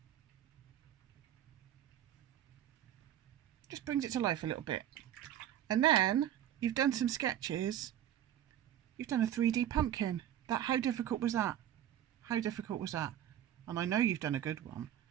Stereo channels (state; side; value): quieter; left; 11.1 dB